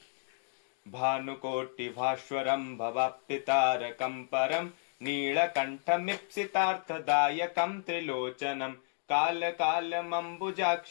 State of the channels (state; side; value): silent; right; 56 dB below the other